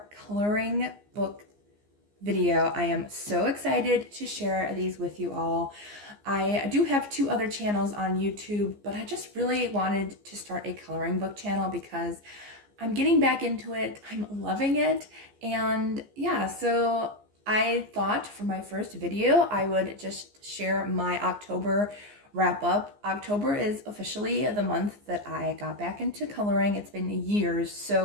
coloring book video. I am so excited to share these with you all. I do have two other channels on YouTube, but I just really wanted to start a coloring book channel because I'm getting back into it. I'm loving it. And yeah, so I thought for my first video, I would just share my October wrap up. October is officially the month that I got back into coloring. It's been years.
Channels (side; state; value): left; late; 14 ms